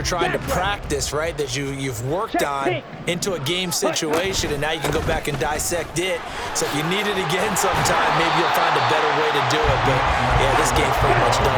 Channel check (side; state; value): both; identical; correlation 1.00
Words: trying to practice, right, that you've worked on into a game situation, and now you can go back and dissect it. So if you need it again sometime, maybe you'll find a better way to do it. But, yeah, this game's pretty much